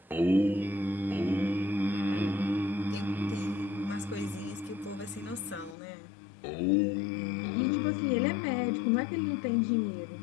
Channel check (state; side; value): drops out; right; at 5.8 s